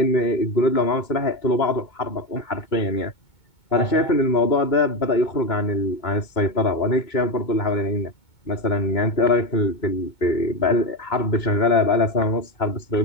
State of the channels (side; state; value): right; late; 2.2 ms